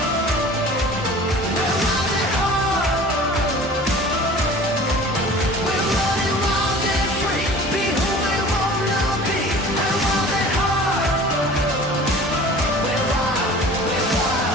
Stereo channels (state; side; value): normal; both; correlation 0.43